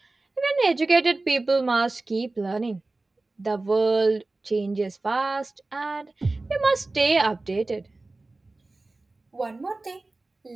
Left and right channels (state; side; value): quieter; left; 3.2 dB